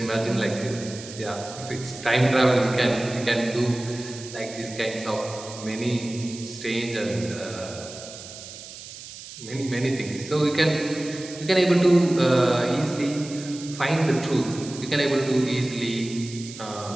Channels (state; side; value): noise; right; hiss, 14 dB below the sound